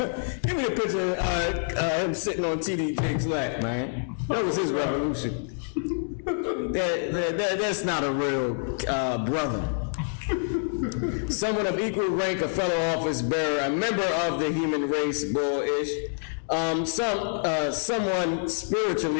Give me a picture of him sitting on T.D. Jake's lap, man. That was his revolution. That's not a real brother. Someone of equal rank, a fellow office bearer, a member of the human race, bullish. Someone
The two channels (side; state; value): right; silent; digital silence